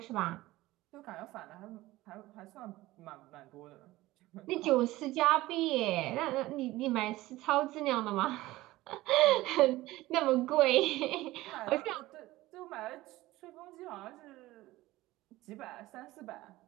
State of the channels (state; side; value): quieter; left; 17.9 dB